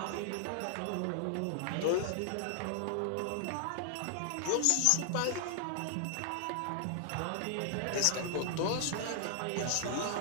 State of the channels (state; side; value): different; both; correlation 0.00